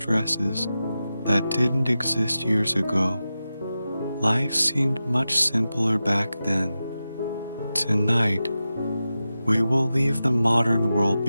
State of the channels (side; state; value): both; inverted; correlation -0.92